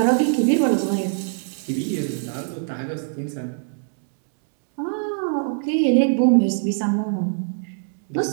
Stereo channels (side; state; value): left; silent; digital silence